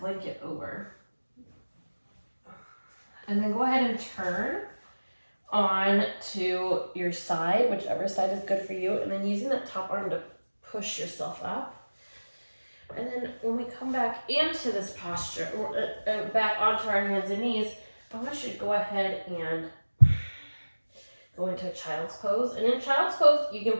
over. And then go ahead and turn on to your side, whichever side is good for you, and then using that top arm to push yourself up. And then when we come back into this posture, back onto our hands and knees, I want you to go ahead and go into a child's pose. And in child's pose, you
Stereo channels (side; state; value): both; inverted; correlation -1.00